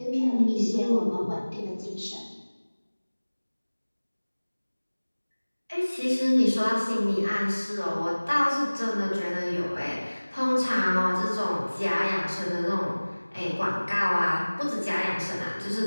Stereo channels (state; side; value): inverted; both; correlation -1.00